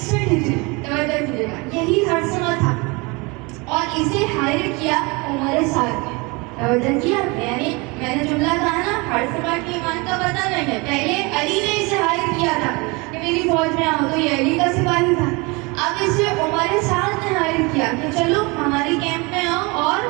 ہجری توجہ کیجیے گا یہی حرثمہ تھا اور اسے ہائر کیا عمر سعد نے. توجہ کیا, یعنی میں نے جملہ کہا نا حرثمہ کی ایمان کا پتہ نہیں ہے, پہلے علی نے اسے ہائر کیا تھا کہ میری فوج میں آؤ, تو یہ علی کا سپاہی تھا. اب اسے عمر سعد نے ہائر کیا کہ چلو ہماری کیمپ میں آؤ, اور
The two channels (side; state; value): left; quieter; 27.0 dB